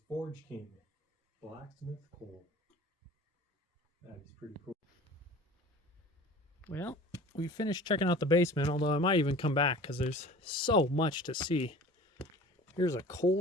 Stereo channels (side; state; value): both; normal; correlation 0.42